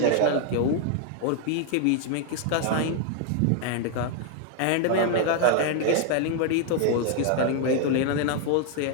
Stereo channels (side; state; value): both; different; correlation 0.00